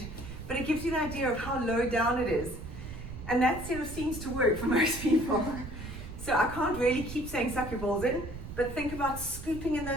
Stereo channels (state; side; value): noise; right; rumble, 10 dB below the sound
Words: but it gives you an idea of how low down it is. And that sort of seems to work for most people. So I can't really keep saying suck your balls in, but think about scooping in